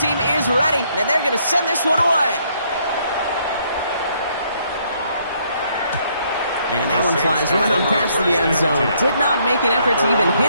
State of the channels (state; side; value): inverted; both; correlation -0.69